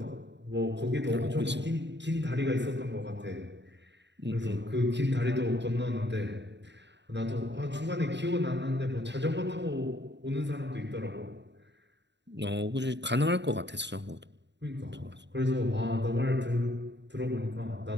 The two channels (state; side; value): late; left; 0.51 ms